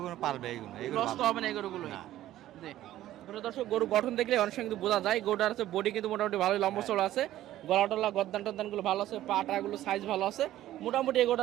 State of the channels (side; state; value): left; quieter; 13.8 dB